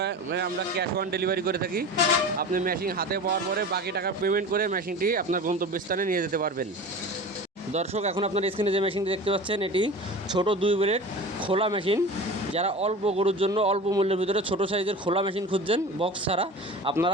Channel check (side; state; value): both; normal; correlation 0.34